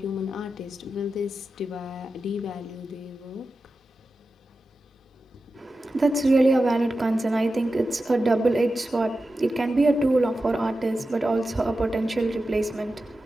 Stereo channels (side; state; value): both; normal; correlation 0.92